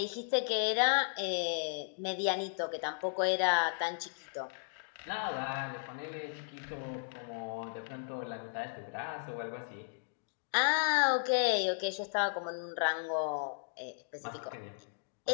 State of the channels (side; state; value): right; silent; digital silence